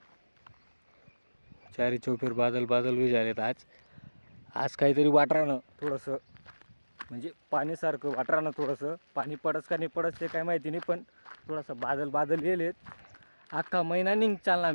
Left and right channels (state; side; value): inverted; both; correlation -1.00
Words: चारी चौफेर बादल बादल भी झालेत आज काहीतरी वाटरानं थोडंसं म्हणजे पाण्यासारखं वाटरानं थोडंसं पाणी पडस का नाही पडस ते काय माहिती नाही पण थोडंसं बादल बादल गेलेत. अख्खा महिना निघ चालला